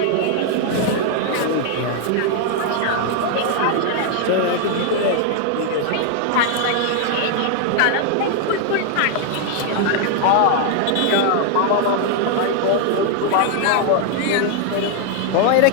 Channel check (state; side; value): different; both; correlation 0.00